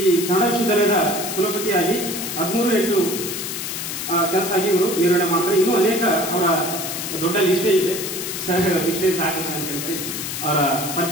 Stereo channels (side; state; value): left; noise; hiss, 5 dB below the sound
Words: ಕನ್ನಡ ವಿಶ್ವವಿದ್ಯಾಲಯದ ಕುಲಪತಿಯಾಗಿ 13/8 ಕೆಲಸ ಆಗಿ ಇವರು ನಿರ್ವಹಣೆ ಮಾಡ್ತಾರೆ. ಇನ್ನೂ ಅನೇಕ ಅವರ ದೊಡ್ಡ ಲಿಸ್ಟೇ ಇದೆ. ಇಷ್ಟೇ ಸಾಕಂತ ಅನ್ಕೊಂಡ್ರೆ ಅವರ